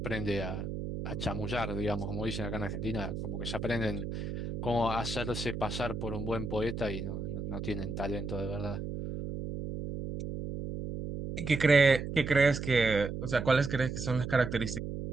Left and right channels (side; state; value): right; noise; hum, 5 dB below the sound